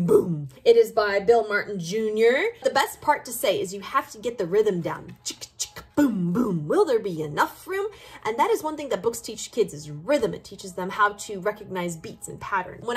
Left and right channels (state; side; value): identical; both; correlation 1.00